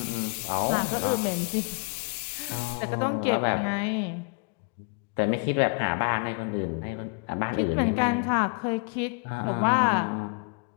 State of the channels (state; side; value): quieter; right; 36.1 dB